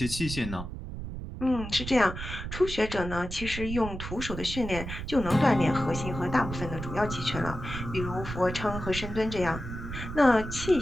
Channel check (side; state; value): right; noise; rumble, 8 dB below the sound